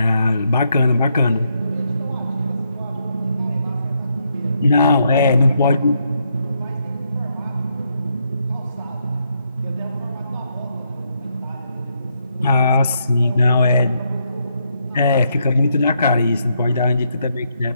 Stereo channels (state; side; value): inverted; both; correlation -0.77